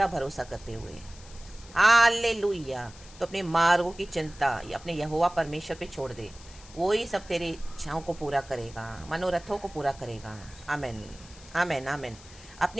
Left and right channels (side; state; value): left; noise; hiss, 20 dB below the sound